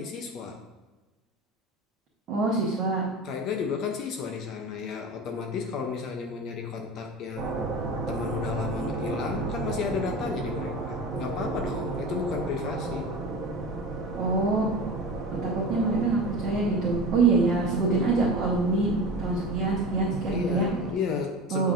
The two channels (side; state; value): both; normal; correlation 0.30